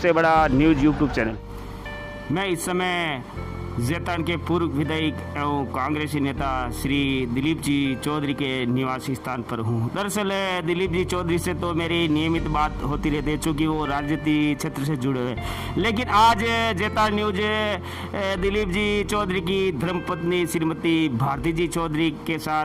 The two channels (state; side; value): identical; both; correlation 1.00